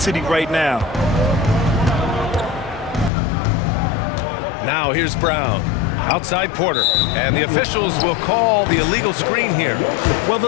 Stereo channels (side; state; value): right; drops out; at 3.1 s